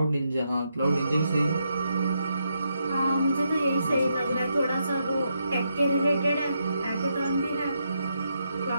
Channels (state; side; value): inverted; both; correlation -0.81